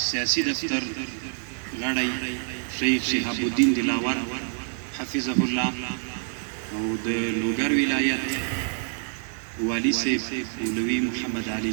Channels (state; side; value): silent; left; digital silence